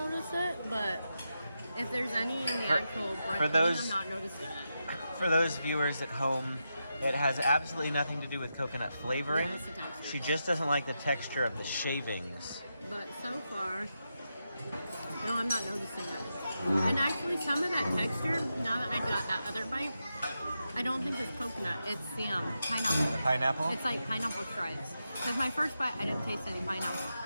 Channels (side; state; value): both; inverted; correlation -0.87